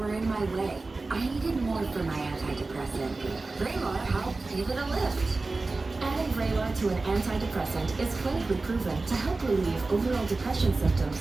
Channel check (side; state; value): left; quieter; 3.5 dB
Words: in my way. I needed more for my antidepressant. Vraylar helped give it a lift. Adding Vraylar to an antidepressant is clinically proven to help relieve overall depression